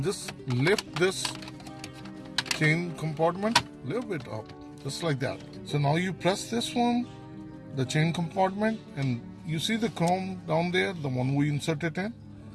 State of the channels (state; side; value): identical; both; correlation 1.00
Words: just lift this chain compartment a little bit up, just like that. So now you press this one, the chain compartment, and you see the chrome down there, the one we inserted in.